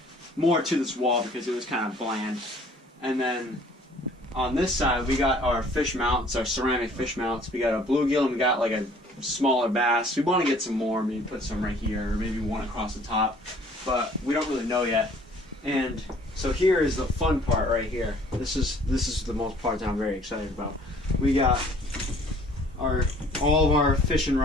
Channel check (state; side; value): normal; both; correlation 0.56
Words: to this wall because it was kind of bland. And then on this side we got our fish mounts, our ceramic fish mounts. We got a bluegill and we got like a smaller bass. We want to get some more, maybe put some right here or maybe one across the top, but we don't really know yet. And so here is the fun part right here. This is the most part that I'm very excited about. We got all of our fishing